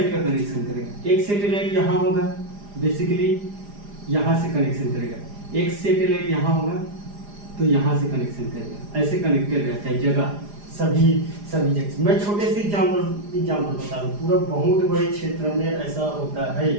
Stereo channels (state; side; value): late; left; 4.9 ms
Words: का कनेक्शन करेगा। एक सैटेलाइट यहाँ होगा, बेसिकली यहाँ से कनेक्शन करेगा। एक सैटेलाइट यहाँ होगा तो यहाँ से कनेक्शन करेगा। ऐसे कनेक्टेड रहता है जगह, सभी जगह। मैं छोटे से एग्जाम्पल बता दूँ, पूरा बहुत बड़े क्षेत्र में ऐसा होता है।